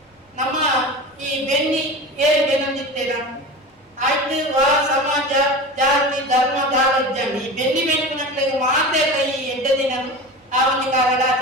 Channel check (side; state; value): both; normal; correlation 0.31